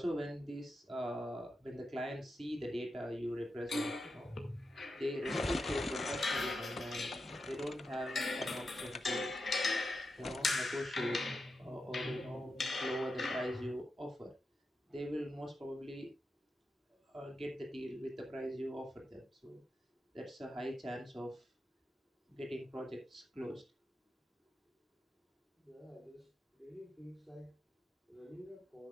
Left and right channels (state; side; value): normal; both; correlation 0.88